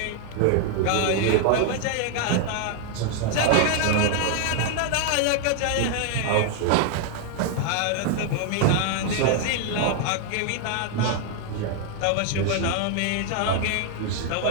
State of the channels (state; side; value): different; both; correlation 0.00